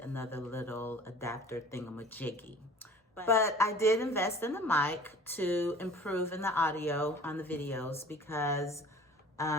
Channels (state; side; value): normal; both; correlation 0.46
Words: little adapter thingamajiggy. But I did invest in the mic to improve in the audio on the videos because